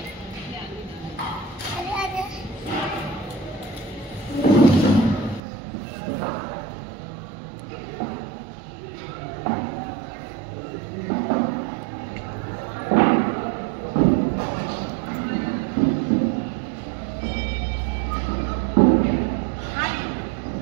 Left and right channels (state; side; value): drops out; left; at 5.4 s